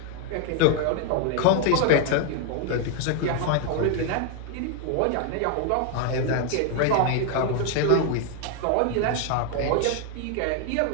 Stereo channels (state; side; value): different; both; correlation 0.01